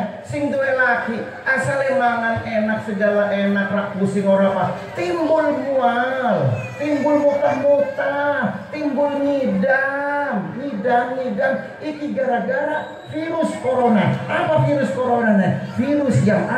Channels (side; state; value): both; identical; correlation 1.00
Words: sing duwe laki asale mangan enak segala enak, rak pusing ora apa, timbul mual, timbul muntah-muntah, timbul ngidam, iki gara-gara virus corona. Apa virus corona nih? Virus yang